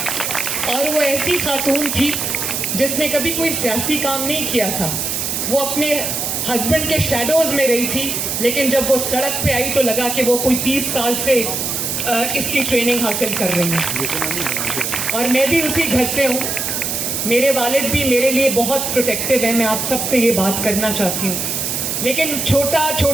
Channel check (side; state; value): right; noise; hiss, 1 dB below the sound